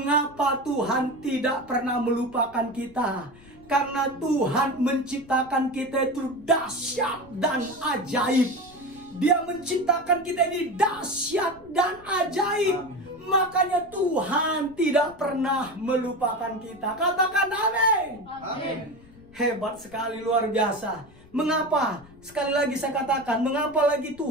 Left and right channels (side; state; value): left; noise; rumble, 24 dB below the sound